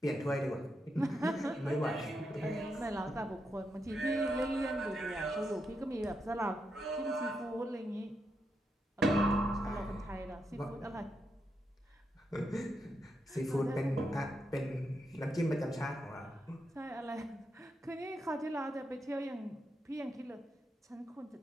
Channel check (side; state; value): both; normal; correlation 0.83